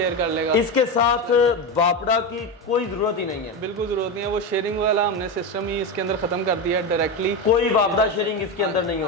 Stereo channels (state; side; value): normal; both; correlation 0.17